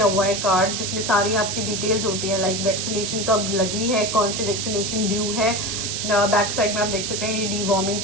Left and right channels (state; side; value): noise; right; hiss, 3 dB below the sound